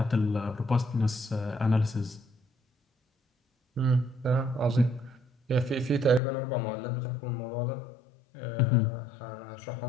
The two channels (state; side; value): drops out; right; at 6.2 s